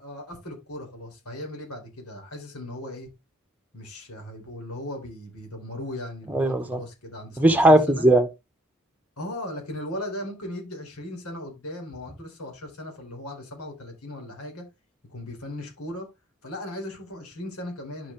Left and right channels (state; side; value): normal; both; correlation 0.67